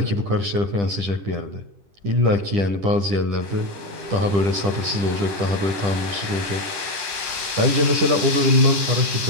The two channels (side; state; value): left; late; 10 ms